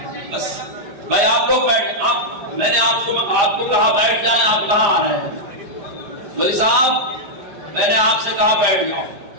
بس بھائی آپ لوگ میں نے آپ کو کہا بیٹھ جائیں. آپ کہاں آ رہے ہیں؟ ولی صاحب میں نے آپ سے کہا بیٹھ جاؤ.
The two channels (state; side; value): late; left; 5.0 ms